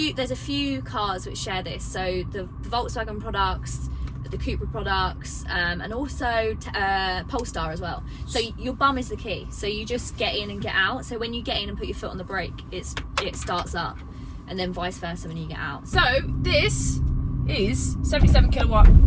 a few cars which share this. So the Volkswagen products, the Cupra products, and also Polestar as well. So your bum is the key. So you just get in and get out. So when you get in and put your foot on the brake, it starts up, and then vice versa when you get out. So this is 77 kilowatt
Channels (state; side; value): identical; both; correlation 1.00